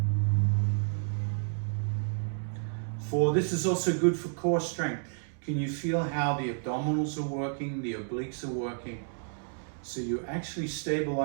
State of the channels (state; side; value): silent; left; digital silence